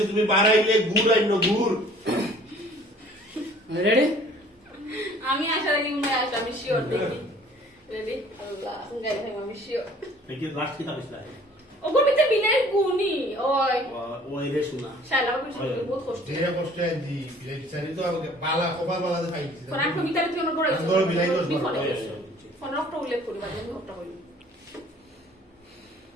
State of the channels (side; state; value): both; normal; correlation 0.53